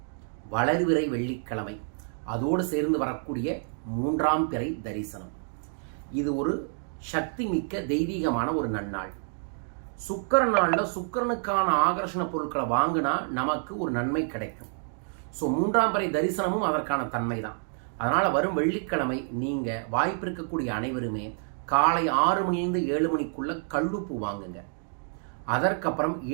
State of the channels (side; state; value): left; silent; 59 dB below the other